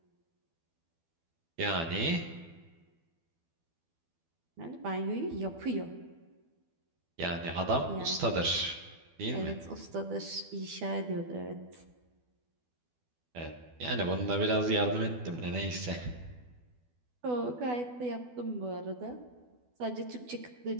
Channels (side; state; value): left; late; 12 ms